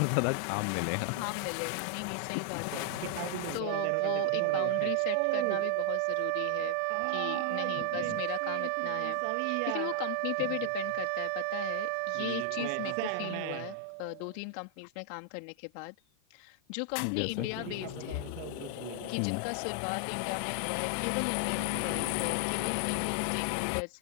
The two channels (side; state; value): both; different; correlation 0.00